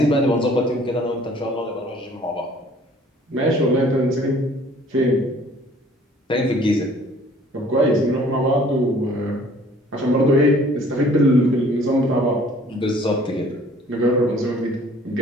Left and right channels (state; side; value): normal; both; correlation 0.54